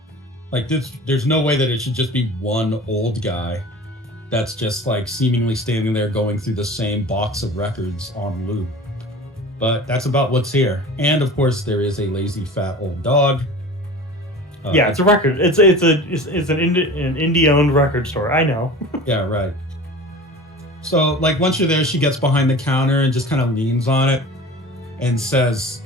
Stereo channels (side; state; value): both; normal; correlation 0.38